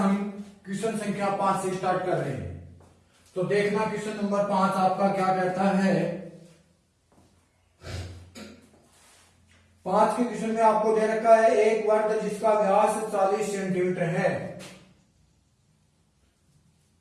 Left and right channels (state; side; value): identical; both; correlation 1.00